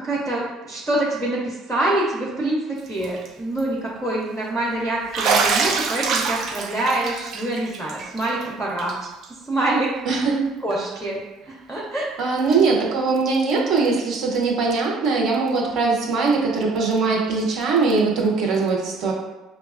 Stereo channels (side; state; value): left; quieter; 3.2 dB